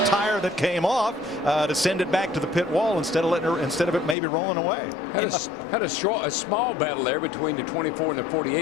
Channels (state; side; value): drops out; right; at 4.2 s